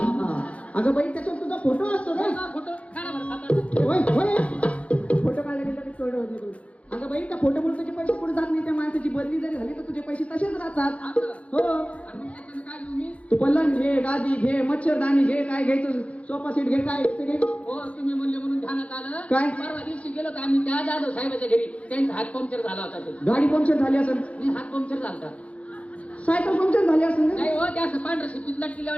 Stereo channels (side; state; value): right; late; 0.064 ms